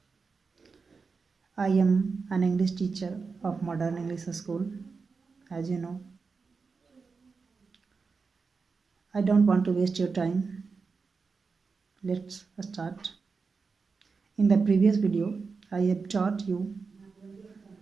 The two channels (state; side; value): quieter; left; 4.8 dB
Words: I am an English teacher of Modern English School. As you know, I don't want to waste your time. Let's start. In the previous video, I have taught you